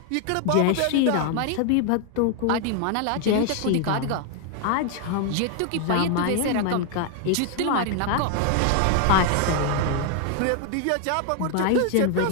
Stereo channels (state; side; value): different; both; correlation 0.00